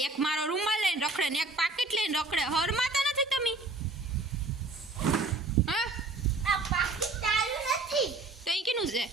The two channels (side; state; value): left; quieter; 3.3 dB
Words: એક મારો રૂમાલ લઈને રખડે ને એક પાકીટ લઈને રખડે. હરમાં તો નથી તમે? છે